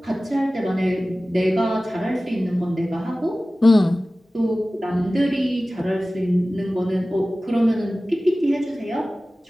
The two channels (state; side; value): normal; both; correlation 0.97